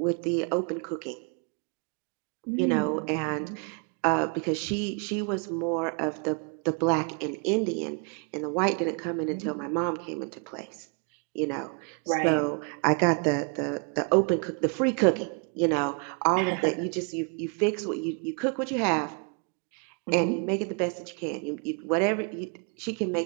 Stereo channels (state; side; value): quieter; left; 37.4 dB